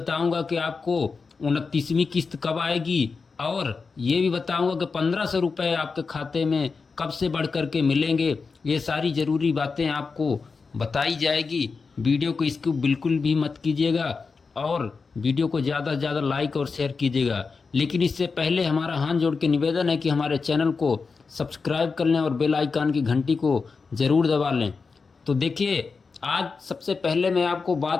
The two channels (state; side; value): quieter; right; 4.7 dB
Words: कि आपको 29वीं किस्त कब आएगी, और ये भी बताऊंगा कि 1500 रुपये आपके खाते में कब से बढ़ कर के मिलेंगे। ये सारी ज़रूरी बातें आपको बताई जाएगी। वीडियो को इसको बिल्कुल भी मत कीजिएगा, और वीडियो को ज़्यादा से ज़्यादा लाइक और शेयर कीजिएगा। लेकिन इससे पहले हमारा हाथ जोड़ के निवेदन है कि हमारे चैनल को सब्सक्राइब कर लें और बेल आइकन की घंटी को ज़रूर दबा लें। तो देखिए, आज सबसे पहले मैं आपको